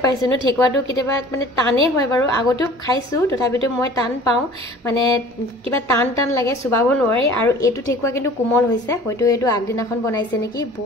পাইছোঁ ন, ঠেকুৱাটো কেতিয়াবা মানে টানেই হয় বাৰু, আগতেও খাইছোঁ, তথাপিতো মই টান পাওঁ, মানে কিবা টান লাগে, চুবাব নোৱাৰি। আৰু এইটো ঠেকুৱা কিন্তু কোমল হৈছে, হয়তো এইটো আগদিনাখন বনাইছে নেকি,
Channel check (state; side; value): normal; both; correlation 0.46